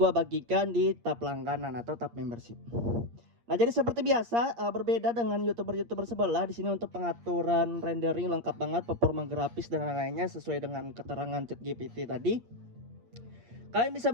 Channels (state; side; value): late; left; 8.6 ms